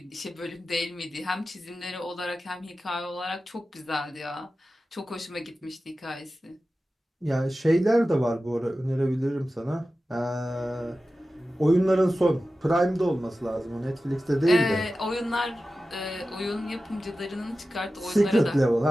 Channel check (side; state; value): both; normal; correlation 0.94